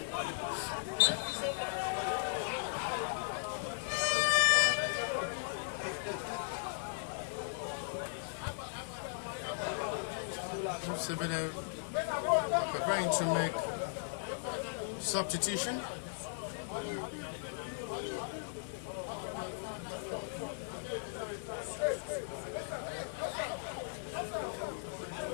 Preparing to make substitution.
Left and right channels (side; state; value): right; silent; digital silence